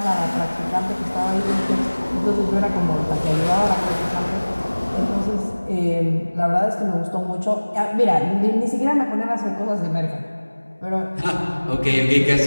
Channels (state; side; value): inverted; both; correlation -1.00